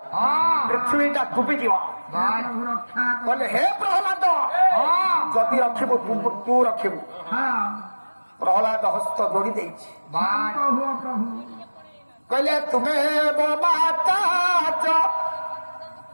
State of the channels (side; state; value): both; inverted; correlation -1.00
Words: पृथ्वीटा डुबी जीव कहले हे प्रहलाद जदि रखिबु तू रखिबु प्रहलाद हस्त जोड़ी देछि कहले तुम्हें माता च